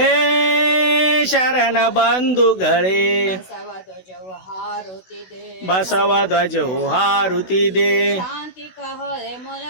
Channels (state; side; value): late; right; 16 ms